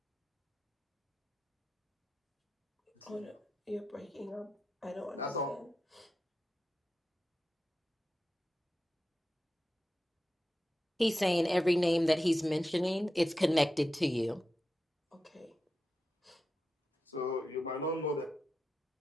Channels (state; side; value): normal; both; correlation 0.90